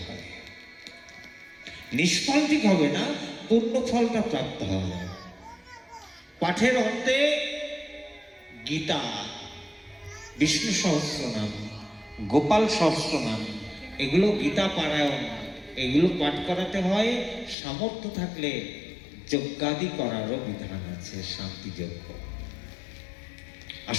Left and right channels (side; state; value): right; drops out; at 17.6 s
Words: হয়। নিষ্ফল ঠিক হবে না, পূর্ণ ফলটা প্রাপ্ত হবে। পাঠের অন্তে গীতা, বিষ্ণু সহস্রনাম, গোপাল সহস্রনাম, এগুলো গীতা পারায়ণ, এগুলো পাঠ করাতে হয়। সামর্থ্য থাকলে যজ্ঞাদি করারও বিধান আছে, শান্তি যজ্ঞ।